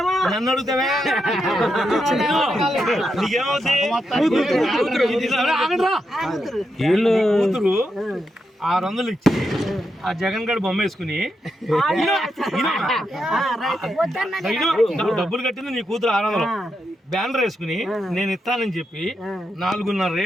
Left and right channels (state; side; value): normal; both; correlation 0.84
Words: నన్ను అడుగుతావే నీకేమవుతాయి? కూతురు 600 ఇచ్చి ఆ జగన్ గడి బొమ్మ వేసుకుని డబ్బులు కట్టింది నీ కూతురు 600 బ్యానర్ వేసుకుని నేను ఇస్తానని చెప్పి 4.5